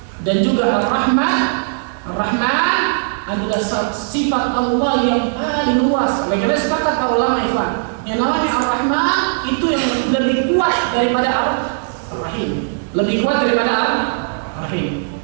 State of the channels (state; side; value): silent; left; digital silence